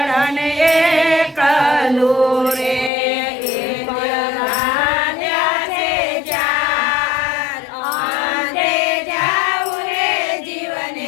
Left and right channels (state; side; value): drops out; right; at 2.9 s